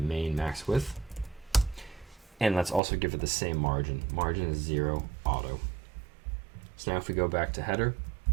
main max width. And let's also give it the same margin. Margin is 0 auto. So now if we go back to header,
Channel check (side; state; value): left; drops out; at 2.8 s